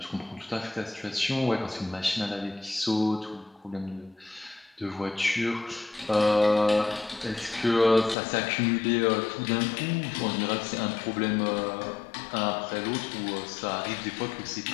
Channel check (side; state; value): right; drops out; at 8.2 s